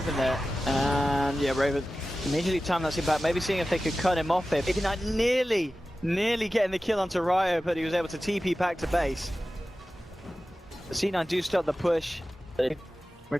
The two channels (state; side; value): normal; both; correlation 0.95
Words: there, and yeah, Raven immediately timed that back, maybe seeing if they could cut him off here. Maybe not nearly getting the kill onto Ryo, but he was able to TP back to base. The C9 do start the push. They